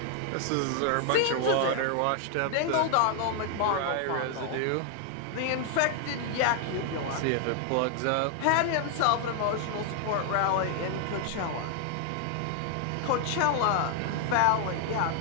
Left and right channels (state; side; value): different; both; correlation 0.00